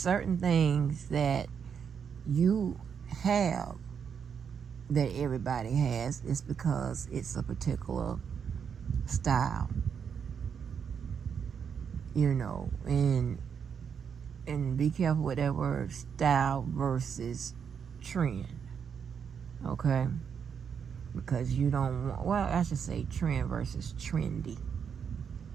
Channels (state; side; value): quieter; left; 7.1 dB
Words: things that you have that everybody has. It's because it's a particular style, and be careful with that word, style versus trend, okay? Because you don't want, well, I should say trend versus trendy.